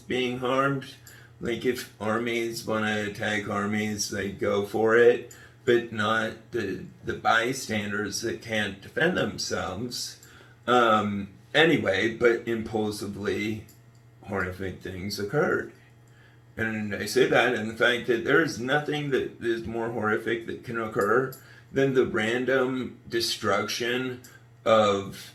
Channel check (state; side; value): identical; both; correlation 1.00